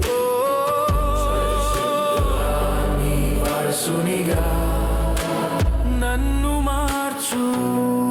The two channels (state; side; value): identical; both; correlation 1.00